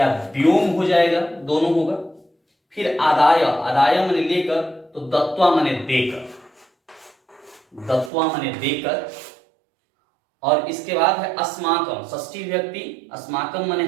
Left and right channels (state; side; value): drops out; left; at 8.1 s